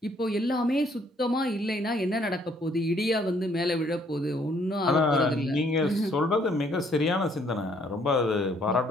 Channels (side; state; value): both; normal; correlation 0.65